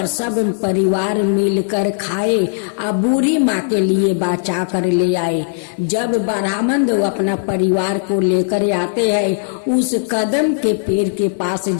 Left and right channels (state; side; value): silent; right; 61 dB below the other